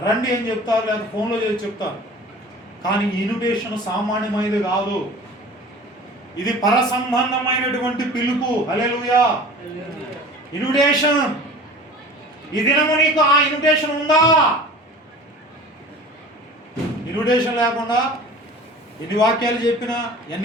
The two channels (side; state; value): both; normal; correlation 0.42